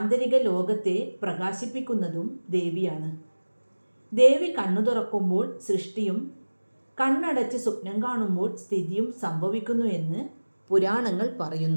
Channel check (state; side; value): inverted; both; correlation -1.00